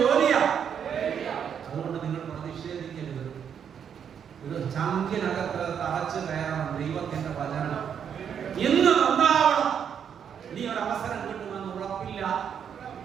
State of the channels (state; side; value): quieter; left; 8.0 dB